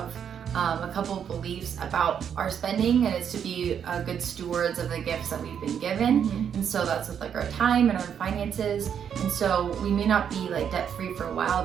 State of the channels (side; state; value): left; quieter; 8.2 dB